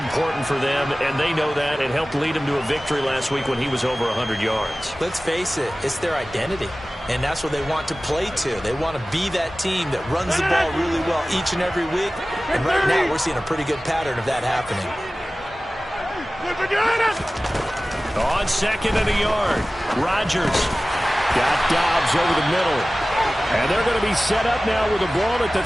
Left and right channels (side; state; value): both; normal; correlation 0.97